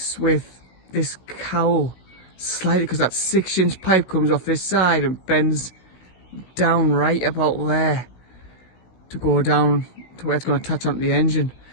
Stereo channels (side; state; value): right; late; 16 ms